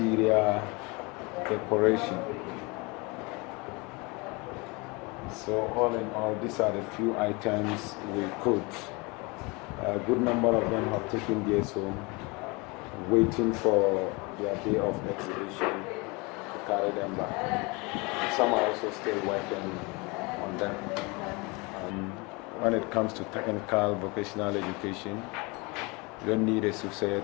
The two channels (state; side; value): quieter; right; 27.2 dB